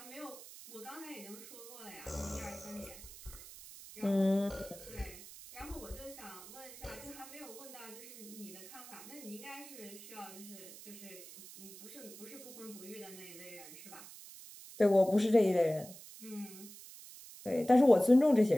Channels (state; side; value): noise; right; hiss, 16 dB below the sound